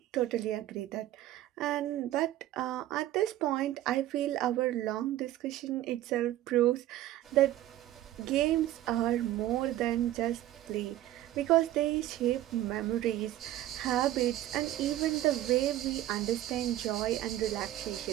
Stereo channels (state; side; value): quieter; left; 14.0 dB